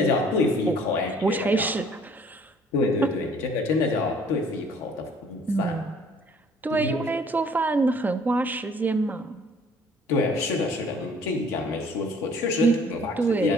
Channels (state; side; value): normal; both; correlation 0.56